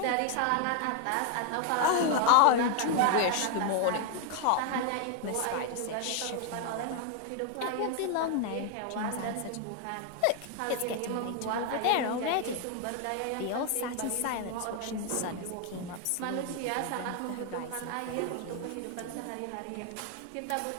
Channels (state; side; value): different; both; correlation 0.00